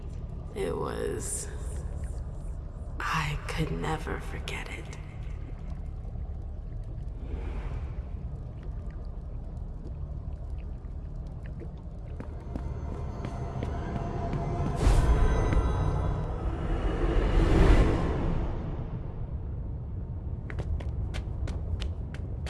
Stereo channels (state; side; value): identical; both; correlation 1.00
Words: It was... I could never forget it.